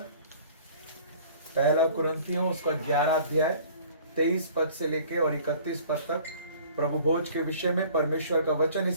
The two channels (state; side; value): inverted; both; correlation -0.50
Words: पहला कुरिन्थियों उसका 11 अध्याय 23 पद से लेके और 31 पद तक प्रभु भोज के विषय में परमेश्वर का वचन